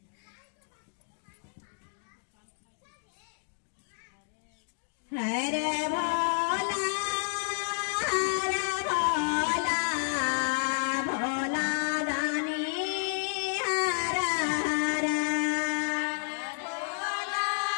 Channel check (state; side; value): silent; right; digital silence